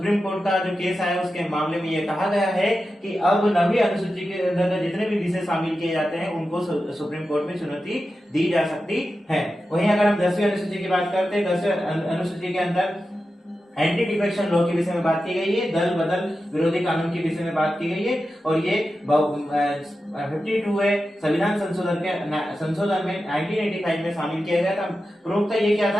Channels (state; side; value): normal; both; correlation 0.92